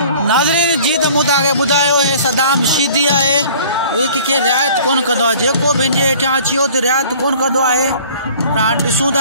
नाज़रीन जी त मूं तव्हांखे ॿुधायो हे सदाम शीदी आहे कंहिंखे रिआयत कोन कंदो आहे जेको पंहिंजे हेठां अची वियो त रिआयत कोन कंदो आहे पर हाणे ॾिसूं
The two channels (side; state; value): both; inverted; correlation -0.50